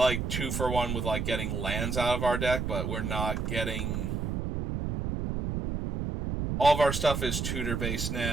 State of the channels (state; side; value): noise; right; rumble, 2 dB below the sound